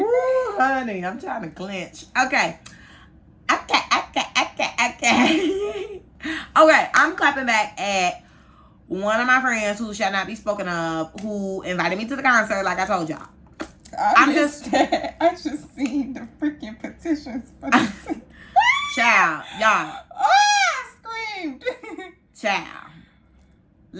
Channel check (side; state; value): both; identical; correlation 1.00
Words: honey, I'm trying to clench. Okay. Okay, I'm clapping back at one of my friends who shall not be spoken of, who invited me to the concert, like I told y'all. I just seen the freaking petitions for this. Child, y'all. I screamed. Child.